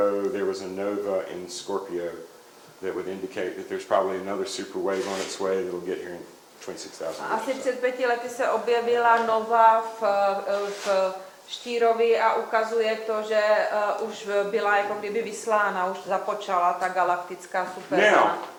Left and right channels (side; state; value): both; identical; correlation 1.00